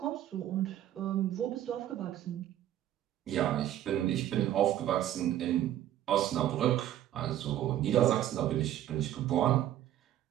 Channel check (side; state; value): left; quieter; 12.2 dB